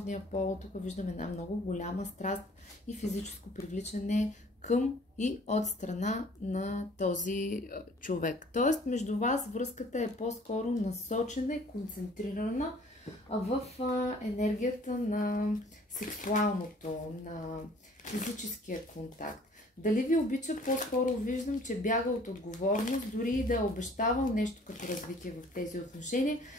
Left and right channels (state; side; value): normal; both; correlation 0.54